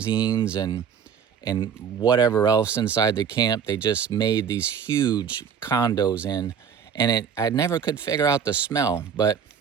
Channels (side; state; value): left; quieter; 7.4 dB